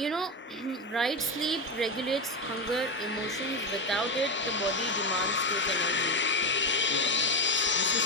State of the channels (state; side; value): normal; both; correlation 0.13